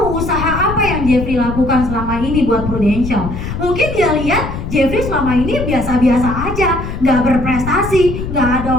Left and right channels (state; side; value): noise; left; rumble, 6 dB below the sound